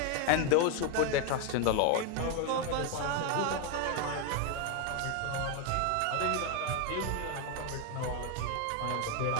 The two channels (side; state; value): both; different; correlation 0.01